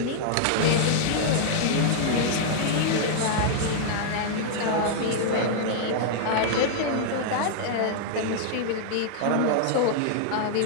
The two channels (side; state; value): both; different; correlation -0.01